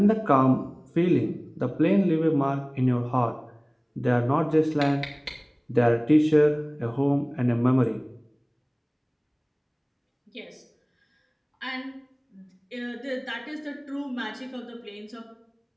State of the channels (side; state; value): both; identical; correlation 1.00